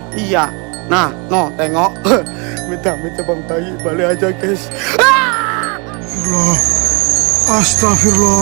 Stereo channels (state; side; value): quieter; left; 32.0 dB